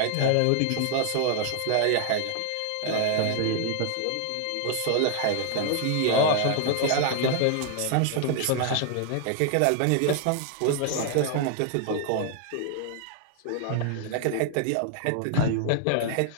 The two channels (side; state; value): both; different; correlation 0.00